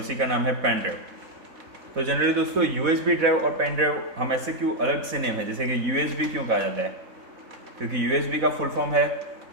का नाम है पेन ड्राइव। तो जनरली दोस्तों यूएसबी ड्राइव और पेन ड्राइव हम ऐसे क्यों अलग से नेम है, जैसे कि यूएसबी क्यों कहा जाता है, क्योंकि यूएसबी का फुल फॉर्म है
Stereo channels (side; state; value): left; late; 4.1 ms